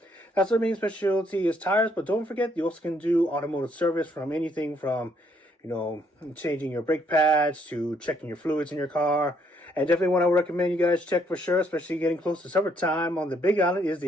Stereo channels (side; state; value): both; normal; correlation 0.70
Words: That's their main specialty is tires, but don't forget, you also can do automotive service from anything from, you know, changing your brake pads to checking your fluids in your car. And definitely what I would recommend you guys check for sure, especially getting close to summertime on the Big Island, is